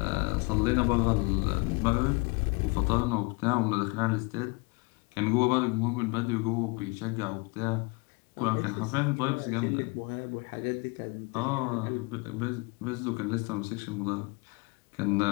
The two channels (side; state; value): right; quieter; 28.5 dB